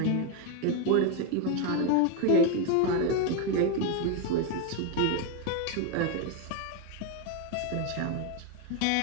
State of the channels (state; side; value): different; both; correlation 0.01